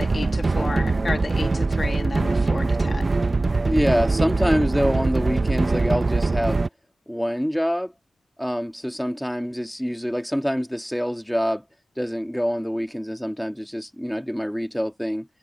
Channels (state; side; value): normal; both; correlation 0.98